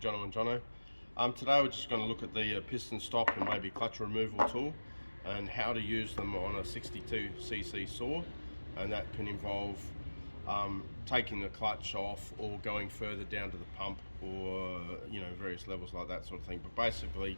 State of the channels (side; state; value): both; inverted; correlation -1.00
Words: Johno. Today we're just going to look at the piston stop and maybe clutch removal tool and how to use them on a 62cc saw, and that can involve taking the clutch off or going further down to the pump, or various levels like that sort of thing. But basically